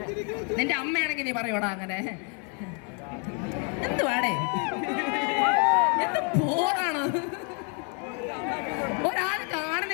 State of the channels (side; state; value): right; quieter; 38.6 dB